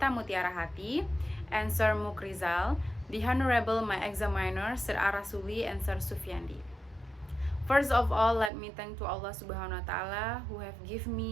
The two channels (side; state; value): left; drops out; at 8.5 s